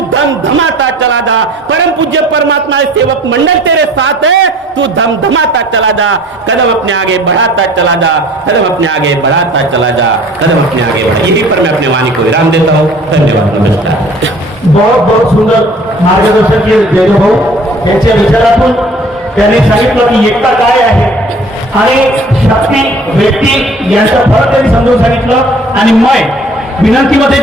धम धमाता चला जा। परम पूज्य परमात्मा सेवक मंडल तेरे साथ है, तू धम धमाता चला जा। कदम अपने आगे बढ़ाता चला जा, कदम अपने आगे बढ़ाता चला जा, कदम अपने आगे बढ़ा। यही पर मैं अपने वाणी को विराम देता हूँ। धन्यवाद, नमस्कार। बहुत बहुत सुंदर मार्गदर्शन केले जयदेव भाऊ यांच्या विचारातून त्यांनी सांगितलं की एकता काय आहे आणि शक्ती व्यक्ती यांचा फरक त्यांनी समजून सांगितलं. आणि मय विनंतीमध्ये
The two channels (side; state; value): both; normal; correlation 0.51